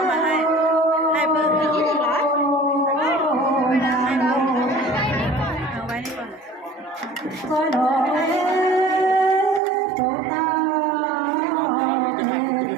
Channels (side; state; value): left; drops out; at 9.6 s